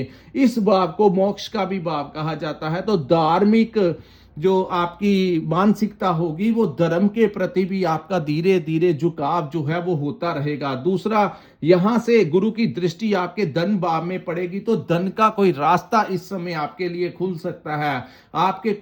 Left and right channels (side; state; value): both; identical; correlation 1.00